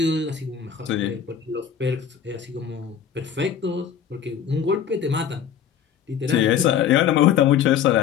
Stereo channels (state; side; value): quieter; right; 8.3 dB